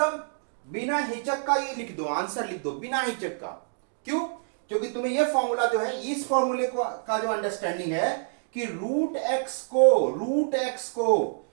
बिना हिचक का ये लिख दो, आंसर लिख दो बिना हिचक का। क्यों? क्योंकि तुम्हें ये फॉर्मूला जो है, इस फॉर्मूले का जो अंडरस्टैंडिंग है कि रूट एक्स को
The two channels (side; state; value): left; silent; digital silence